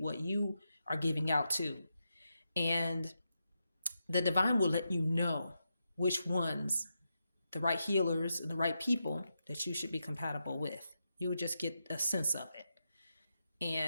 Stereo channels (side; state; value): both; inverted; correlation -0.86